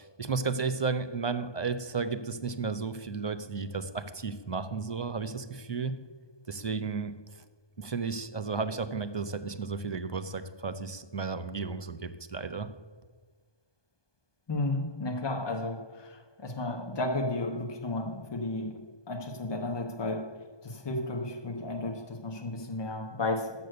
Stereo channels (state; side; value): late; right; 1.2 ms